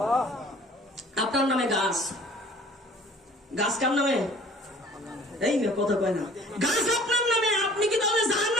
আপনার নামে গাছ, গাছ কার নামে? এই না, কথা কয় না। গাছ আপনার নামে, আপনি কি তাহলে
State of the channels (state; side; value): normal; both; correlation 0.50